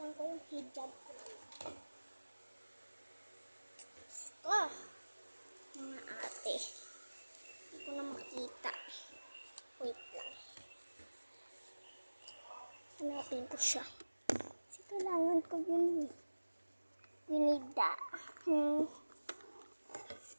ko yung hijab ko naman. Mga ate. Hindi ko na makita. Wait lang. Hanapin ko siya. Kasi kailangan ko yun. Ginida.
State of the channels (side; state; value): both; inverted; correlation -1.00